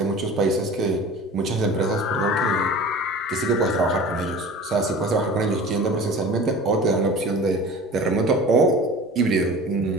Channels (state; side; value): normal; both; correlation 0.39